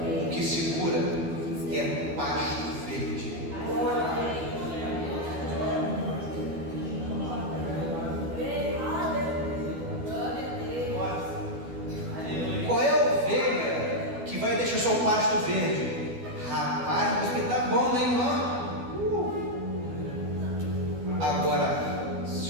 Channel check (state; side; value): late; left; 12 ms